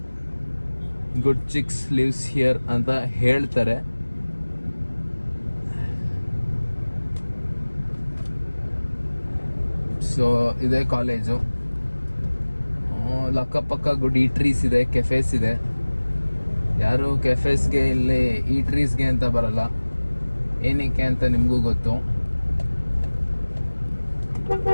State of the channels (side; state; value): both; inverted; correlation -1.00